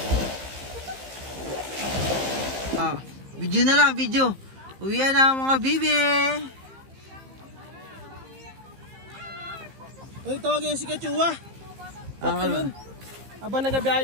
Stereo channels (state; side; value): late; left; 15 ms